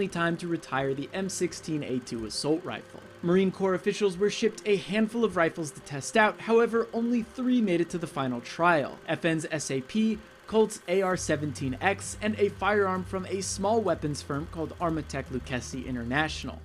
time to retire the M16A2 assault rifle. Marine Corps officials were shipped a handful of rifles to test out, however, only 3 made it to the final trial: FN's SAP, Colt's AR-17X, and a firearm from a small weapons firm called Armatech Lucchesi International.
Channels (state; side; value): identical; both; correlation 1.00